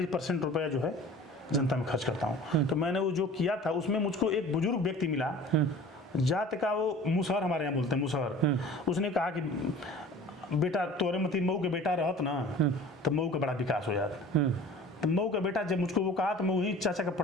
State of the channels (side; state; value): both; normal; correlation 0.43